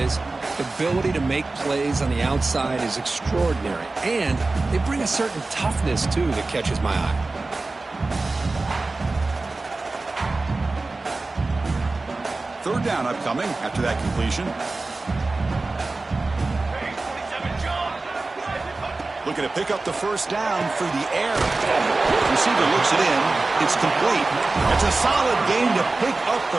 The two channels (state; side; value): quieter; left; 3.4 dB